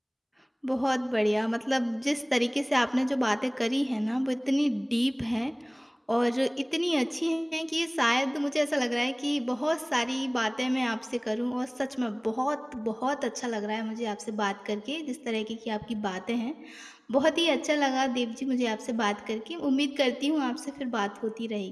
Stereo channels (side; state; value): both; identical; correlation 1.00